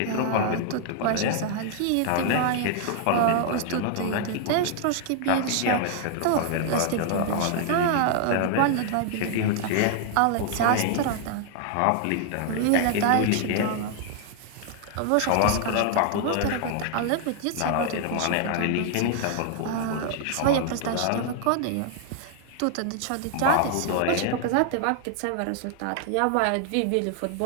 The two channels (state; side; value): different; both; correlation 0.00